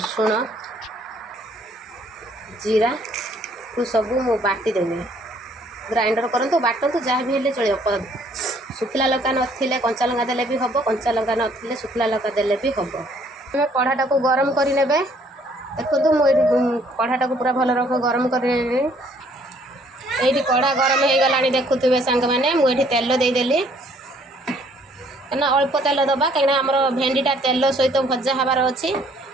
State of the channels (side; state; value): both; normal; correlation 0.62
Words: जीरा को सब मु बाटी देवी ग्राइंडर करंतु बाटंतु जहाँ भी हेले चलियो। सुखिला लंका नथिले कंचा लंका देले भी हबो कंचा लंका नथिले सुखिला लंका देले भी हबो। मैं कढ़ाटा को गरम करि नेबे। देखो मुझे कढ़ाटा को पूरा भल रख गरम कर कढ़ा गरम हो गला देखुवे सांग मैंने मुझे तेल देदेली ना अल्प तेल दबा कहीं आम भेंडीटा तेल सहित भजा हबार अच्छी।